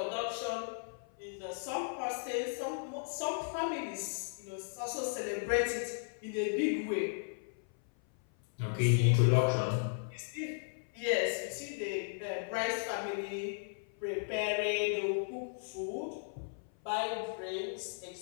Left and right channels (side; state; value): right; silent; 54 dB below the other